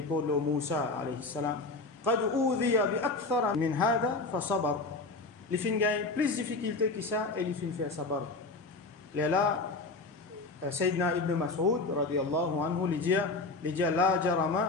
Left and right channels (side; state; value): right; quieter; 3.4 dB